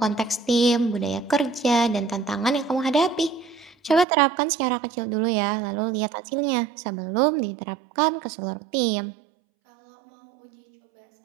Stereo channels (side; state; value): left; drops out; at 4.0 s